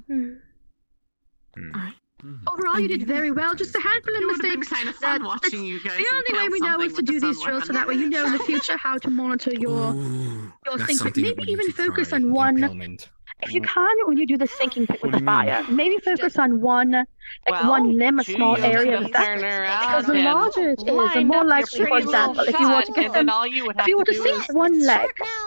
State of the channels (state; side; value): inverted; both; correlation -1.00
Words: Overall, you did very well. Just a handful of mistakes. Kind of fun watching you guys. The only way we know is to do these drills, so that way you know in the future how to monitor your thinking. Maybe even focus on one if you can, when you do the sinking pit with the fire, maybe focus on one limb, a small area of that. Because the larger it is, the more likely, for example, if you were to get them, if you were to sink one leg,